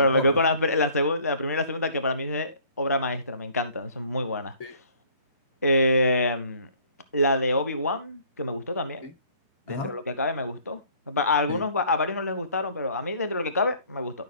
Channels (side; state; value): both; inverted; correlation -0.57